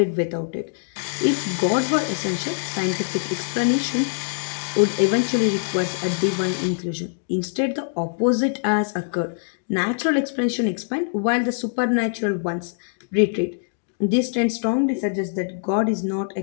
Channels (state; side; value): silent; right; digital silence